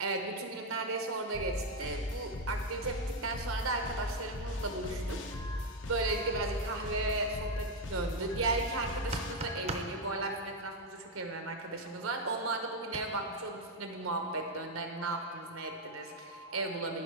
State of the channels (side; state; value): both; normal; correlation 0.05